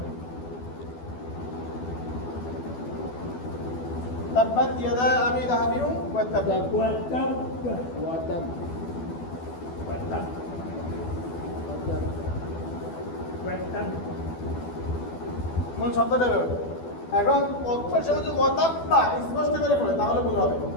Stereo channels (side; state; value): right; late; 12 ms